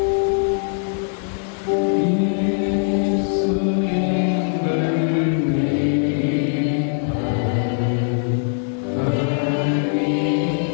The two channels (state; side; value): silent; right; digital silence